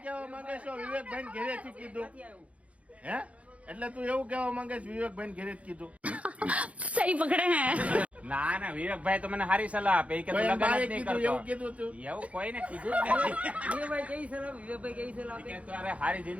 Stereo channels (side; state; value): left; late; 0.065 ms